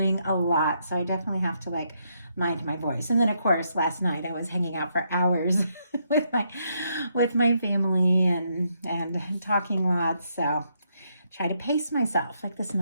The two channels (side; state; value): both; inverted; correlation -0.77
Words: a lot, so I definitely have to like mind my voice. And then of course last night I was hanging out for hours with my family and talking lots, so try to pace myself like this